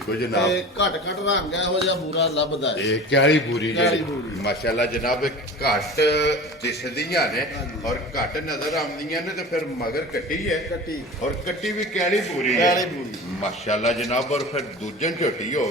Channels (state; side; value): normal; both; correlation 0.36